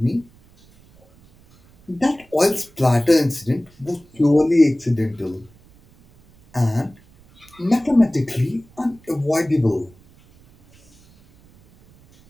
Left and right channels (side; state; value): right; noise; rumble, 29 dB below the sound